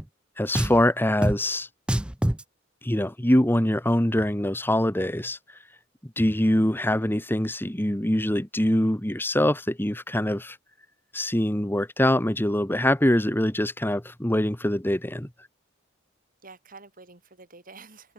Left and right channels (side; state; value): both; normal; correlation 0.88